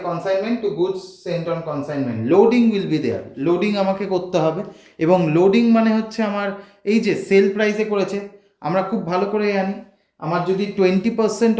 consignment to goods sent on consignment. Loading will be there, loading আমাকে করতে হবে, এবং লোডিং মানে হচ্ছে আমার এই যে সেল প্রাইসে করেছে, আমরা খুব ভালো করে জানি আমার যদি 20%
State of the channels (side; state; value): both; identical; correlation 1.00